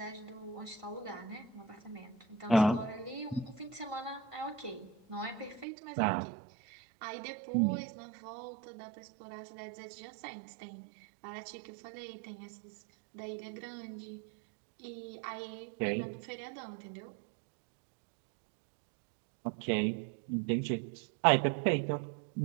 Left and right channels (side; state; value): left; drops out; at 5.7 s